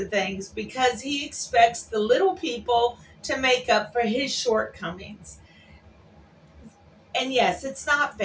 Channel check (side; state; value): both; identical; correlation 1.00